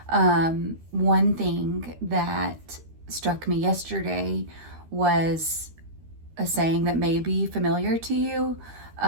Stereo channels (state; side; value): late; left; 13 ms